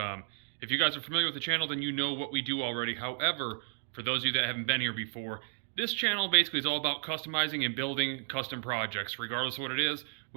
If you guys are familiar with the channel, then you know what we do already. However, for those of you that haven't been here before, this channel basically is all about customizing and building custom projects. Regardless of what it is,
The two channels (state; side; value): silent; left; 56 dB below the other